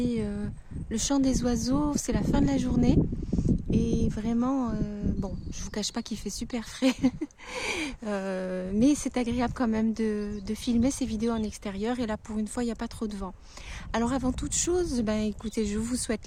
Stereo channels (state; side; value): identical; both; correlation 1.00